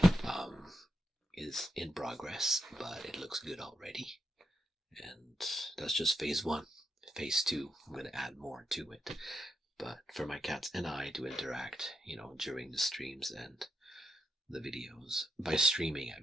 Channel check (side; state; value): both; normal; correlation 0.83